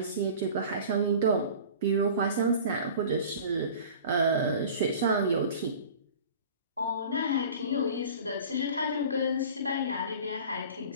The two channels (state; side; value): inverted; both; correlation -0.41